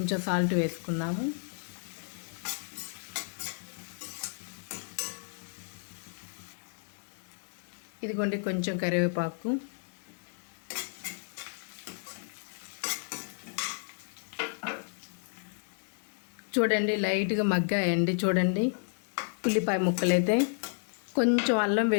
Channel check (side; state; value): right; silent; digital silence